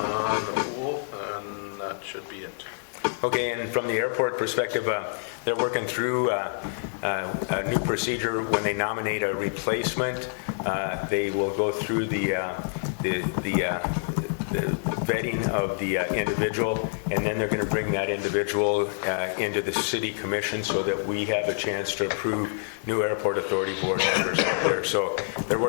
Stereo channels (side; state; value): right; silent; digital silence